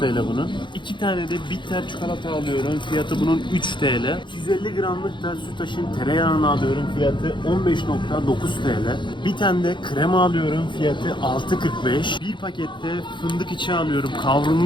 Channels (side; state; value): right; late; 0.23 ms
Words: bunun. 2 tane de bitter çikolata alıyorum. Fiyatı bunun 3 TL. 250 gramlık da Sütaş'ın tereyağını alıyorum. Fiyatı 15,9 TL. Bir tane de krema alıyorum. Fiyatı 6,45. Bir pakette fındık içi alıyorum.